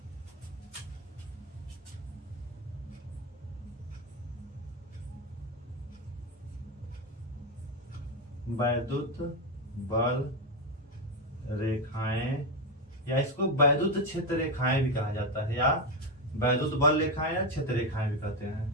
वैद्युत बल रेखाएं या इसको वैद्युत क्षेत्र रेखाएं भी कहा जाता है, या वैद्युत बल रेखाएं या क्षेत्र रेखाएं भी कहते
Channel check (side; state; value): both; normal; correlation 0.10